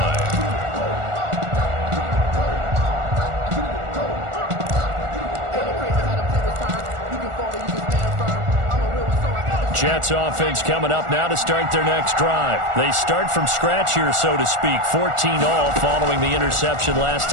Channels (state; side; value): late; left; 1.4 ms